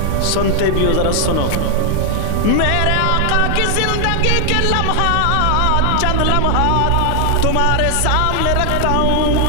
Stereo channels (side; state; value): both; different; correlation 0.00